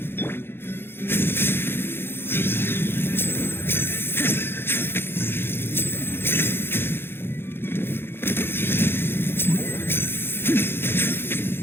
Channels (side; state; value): right; late; 0.11 ms